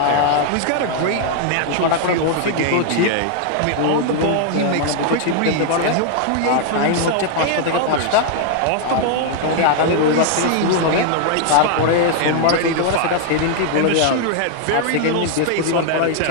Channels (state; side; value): different; both; correlation 0.00